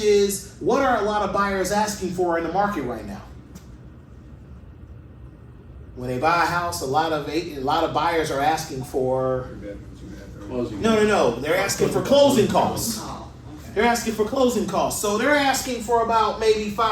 what are a lot of buyers asking for in the market right now? When they buy a house, a lot of buyers are asking for, Closing. no, they're asking for closing costs. They're asking for closing costs. So they're asking for about maybe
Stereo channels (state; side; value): identical; both; correlation 1.00